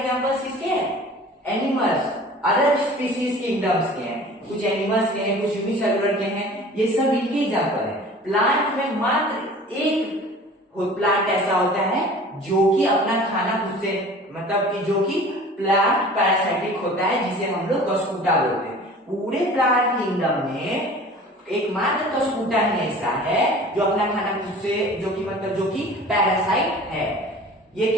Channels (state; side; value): normal; both; correlation 0.43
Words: किसके हैं, एनिमल्स, अदर स्पीसीज किंगडम्स के हैं, कुछ एनिमल्स के हैं, कुछ यूनिसेलुलर के हैं, ये सब इनके एग्जाम्पल है। प्लांट में मात्र एक प्लांट ऐसा होता है जो कि अपना खाना खुद से, मतलब कि जो कि प्लांट पैरासाइटिक होता है, जिसे हम लोग कस्कूटा बोलते हैं। पूरे प्लांट किंगडम में एकमात्र कस्कूटा ही ऐसा है जो अपना खाना खुद से, जो कि मतलब जो कि पैरासाइट है। ये